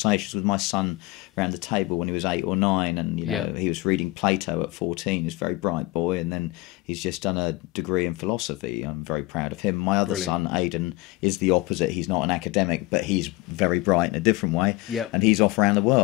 with my son around the table when he was 8 or 9, and he was reading Plato at 14. He's a very bright boy, and then he's just done a degree in philosophy. I'm very proud of him. My other son, Aidan, is the opposite. He's not an academic, but he's very bright in a different way. Yep. And he's off around the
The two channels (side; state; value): right; quieter; 20.6 dB